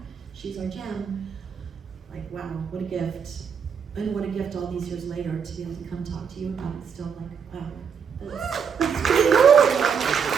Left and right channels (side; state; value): left; quieter; 6.7 dB